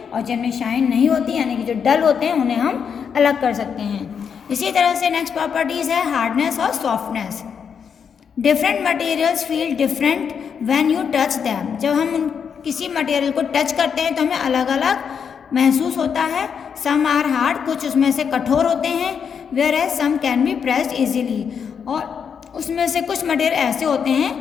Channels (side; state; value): right; quieter; 7.0 dB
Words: और जिनमें शाइन नहीं होती यानी कि जो डल होते हैं उन्हें हम अलग कर सकते हैं। इसी तरह से नेक्स्ट प्रॉपर्टीज़ है हार्डनेस और softness. Different materials feel different when you touch them. जब हम किसी मटेरियल को टच करते हैं तो हमें अलग अलग महसूस होता है। सम आर हार्ड, कुछ उसमें से कठोर होते हैं, whereas some can be pressed easily. और उसमें से कुछ मटेरियल ऐसे होते